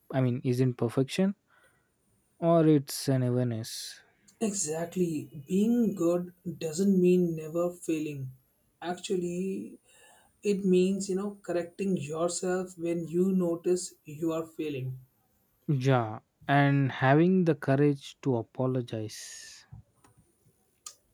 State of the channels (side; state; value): both; identical; correlation 1.00